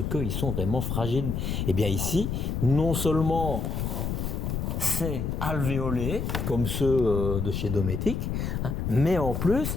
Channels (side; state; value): left; noise; rumble, 2 dB below the sound